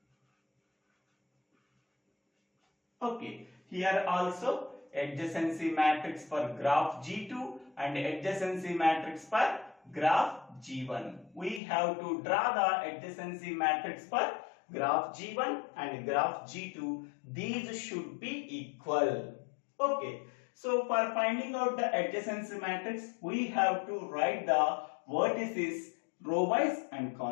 Okay, here also adjacency matrix for graph G2 and adjacency matrix for graph G1. We have to draw the adjacency matrix for graph G1 and graph G2. These should be equal. Okay, so for finding out the adjacency matrix, we have to write the vertices row wise and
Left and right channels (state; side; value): drops out; right; at 11.6 s